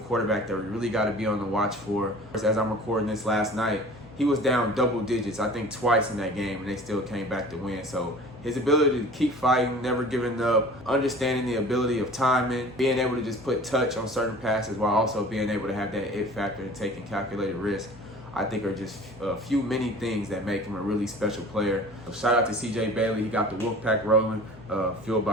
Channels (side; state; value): both; normal; correlation 0.43